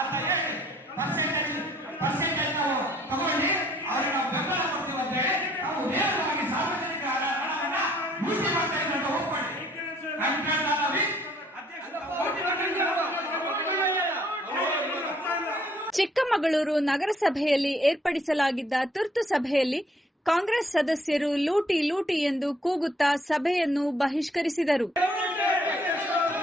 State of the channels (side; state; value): both; normal; correlation 0.63